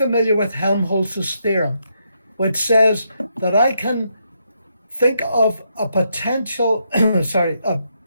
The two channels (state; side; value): inverted; both; correlation -0.79